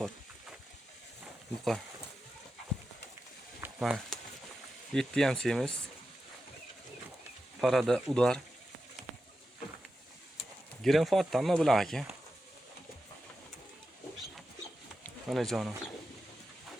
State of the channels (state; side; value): normal; both; correlation 0.90